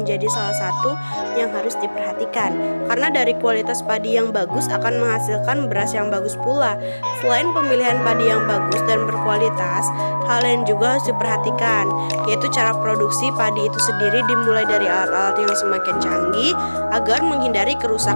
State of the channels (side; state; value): both; inverted; correlation -1.00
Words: salah satu yang harus diperhatikan. Karena dari kualitas padi yang bagus akan menghasilkan beras yang bagus pula. Selain pemilihan padi yang bagus dan berkualitas, hal lain juga harus diperhatikan, yaitu cara produksi padi itu sendiri dimulai dari alat-alat yang semakin canggih agar menghindari